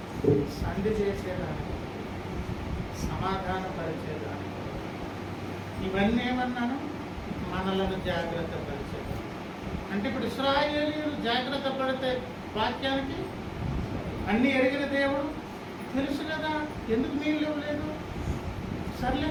సంధి చేసేదానికి, సమాధానపరిచేదానికి. ఇవన్నీ ఏమన్నాను? మనలను జాగ్రత్త పరిచేదానికి. అంటే ఇప్పుడు ఇశ్రాయేలీయులు జాగ్రత్త పడితే వాక్యానికి అన్నీ ఎరిగిన దేవుడు తెలుసు కదా, ఎందుకు నీళ్ళు ఇవ్వలేదు, సర్లే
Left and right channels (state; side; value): identical; both; correlation 1.00